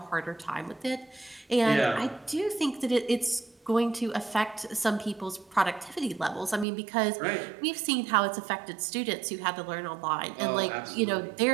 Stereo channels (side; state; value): left; drops out; at 6.7 s